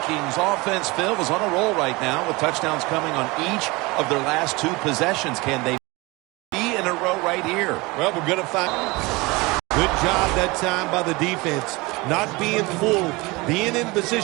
offense, Phil, is on a roll right now with touchdowns coming on each of their last 2 possessions. Can they be in a row right here? Well, we're going to find. Good job that time by the defense. Not being full, being in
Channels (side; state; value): left; quieter; 23.9 dB